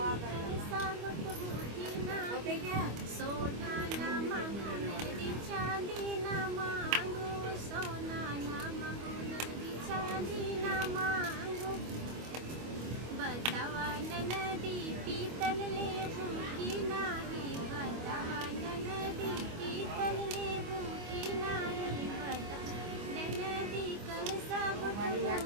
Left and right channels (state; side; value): late; left; 25 ms